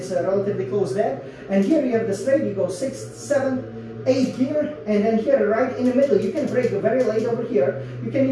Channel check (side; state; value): both; identical; correlation 1.00